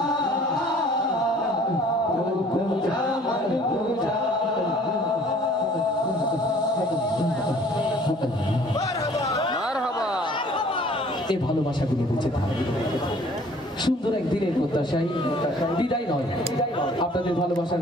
तू खुदा मन खुदा। এই ভালোবাসাগুলো বেঁচে থাকে সুন্দর একদিনের প্রত্যাশায়, বিদায় নয়। আপনাদের ভালোবাসার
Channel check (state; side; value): normal; both; correlation 0.54